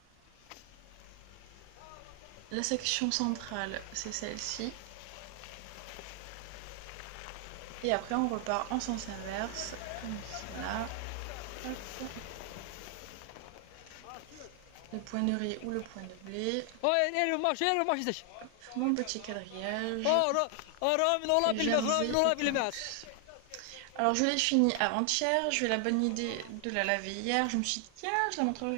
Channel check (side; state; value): both; different; correlation 0.00